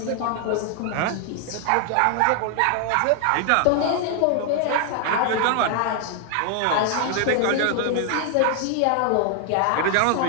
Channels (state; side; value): different; both; correlation 0.00